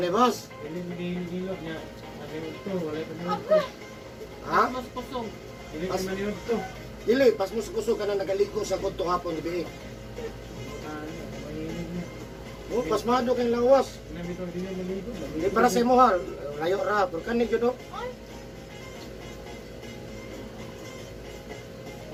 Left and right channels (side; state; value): both; identical; correlation 1.00